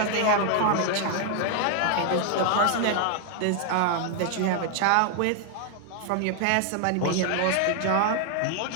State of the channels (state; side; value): different; both; correlation 0.00